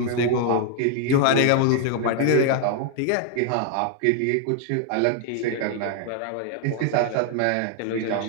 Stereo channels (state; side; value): different; both; correlation 0.00